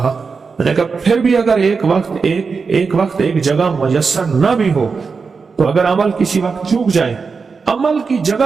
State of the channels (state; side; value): quieter; left; 5.0 dB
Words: میں نے کہا پھر بھی اگر ایک وقت ایک جگہ میسر نہ بھی ہو تو اگر عمل کسی وقت چوک جائے، عمل کی